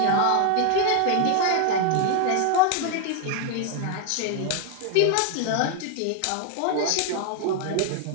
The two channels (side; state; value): both; different; correlation 0.00